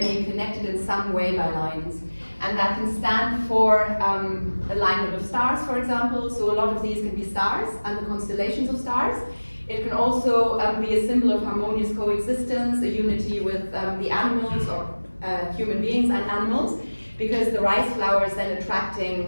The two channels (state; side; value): inverted; both; correlation -1.00